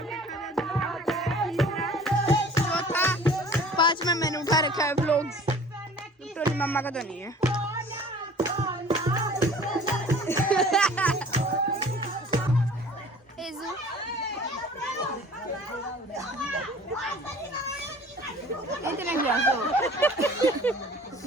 चौथा 5वां मैंने उठा रखा है व्लॉग्स, टोली मम्मा का तो नहीं है।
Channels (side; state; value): both; normal; correlation 0.47